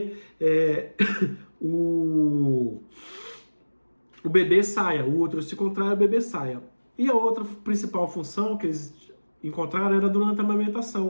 o bebê saia, o útero se contrai, o bebê saia. E a outra principal função que eles encontraram era durante a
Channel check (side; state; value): both; inverted; correlation -1.00